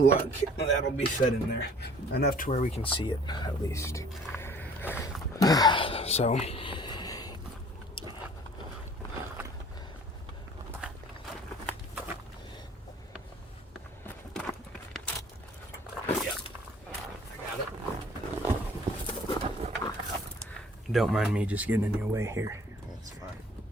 that'll be fed in there. Enough to where we can see it, at least. So, yeah, I got it. Don't mind me just getting in your way here. That's fine.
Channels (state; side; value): normal; both; correlation 0.53